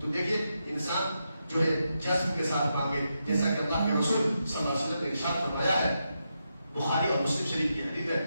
دیکھیے انسان جو ہے جذب کے ساتھ مانگے, جیسا کہ اللہ کے رسول صلی اللہ علیہ وسلم نے ارشاد فرمایا ہے, بخاری اور مسلم شریف کی حدیث ہے,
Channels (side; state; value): both; inverted; correlation -0.85